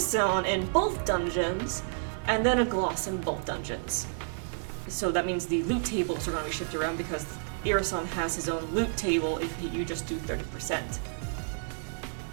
in both dungeons, and then a gloss in both dungeons. So that means the loot tables are going to be shifted around because Irisan has his own loot table if you just do 30%.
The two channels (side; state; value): left; silent; digital silence